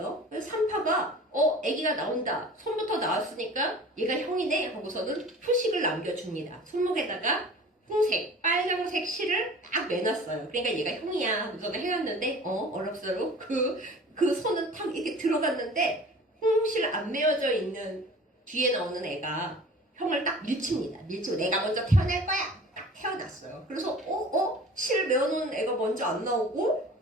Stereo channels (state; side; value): normal; both; correlation 0.43